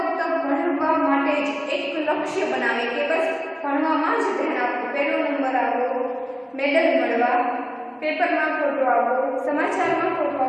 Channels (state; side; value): identical; both; correlation 1.00